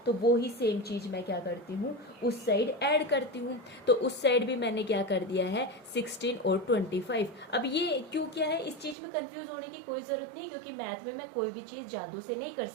तो वो ही सेम चीज मैं क्या करती हूँ, उस साइड ऐड करती हूँ। तो उस साइड भी मैंने क्या कर दिया है, 16 और 25। अब ये क्यों क्या है, इस चीज में कंफ्यूज होने की कोई जरूरत नहीं, क्योंकि मैथ में मैं कोई भी चीज जादू से नहीं कर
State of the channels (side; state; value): left; drops out; at 9.0 s